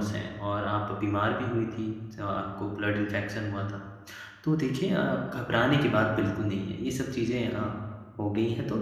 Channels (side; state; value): both; identical; correlation 1.00